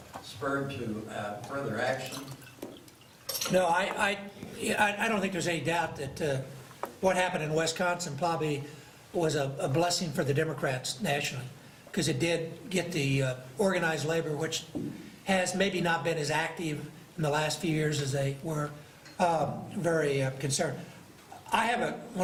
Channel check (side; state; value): both; identical; correlation 1.00